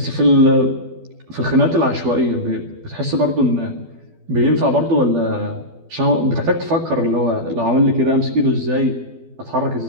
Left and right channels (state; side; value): late; left; 12 ms